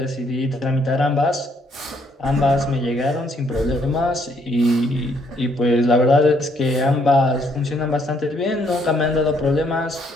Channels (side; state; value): both; normal; correlation 0.69